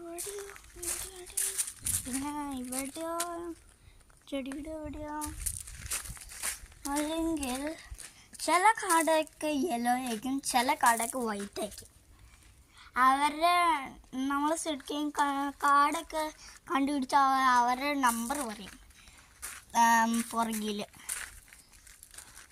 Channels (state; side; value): identical; both; correlation 1.00